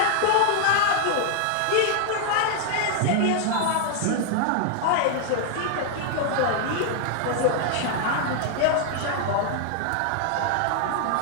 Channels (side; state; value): both; different; correlation 0.00